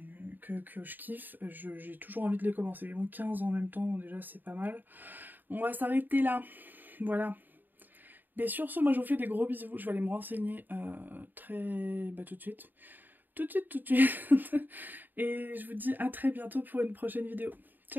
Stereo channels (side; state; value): left; late; 0.090 ms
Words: que je kiffe, j'ai toujours envie de les commencer. Bon, 15 en même temps, déjà, c'est pas mal. On va s'arrêter là. Voilà. Mais sur ce, moi, je vous fais des gros bisous. Je vais aller me renseigner tout de suite. Tout de suite. Et je vous dis à très bientôt pour une prochaine vidéo.